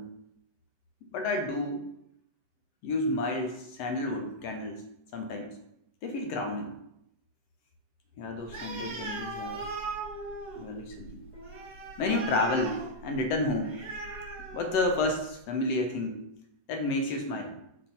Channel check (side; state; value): right; late; 7.9 ms